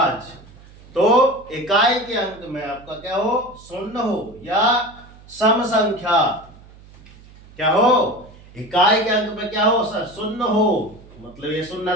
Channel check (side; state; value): right; noise; hum, 22 dB below the sound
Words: तो इकाई के अंक में आपका क्या हो, शून्य हो या सम संख्या, क्या हो, इकाई के अंक में क्या हो सर, शून्य हो, मतलब ये शून्य